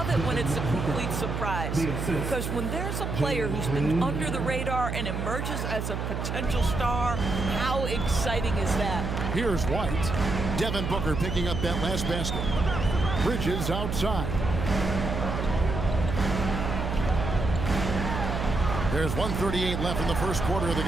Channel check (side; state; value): right; noise; hum, 3 dB below the sound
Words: it when it's a complete surprise. Because when there's a player who's been under the radar and emerges as a potential star, how exciting is that? Here's White. Devin Booker picking up that last basket. Bridges outside. There's 1:38 left in the first quarter of the